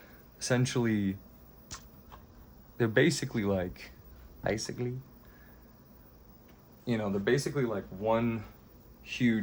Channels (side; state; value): both; identical; correlation 1.00